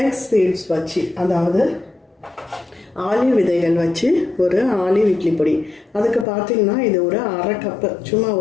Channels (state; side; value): drops out; right; at 6.2 s